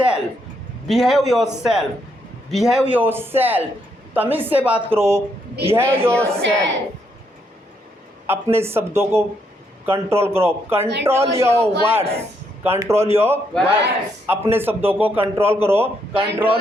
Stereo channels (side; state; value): both; normal; correlation 0.76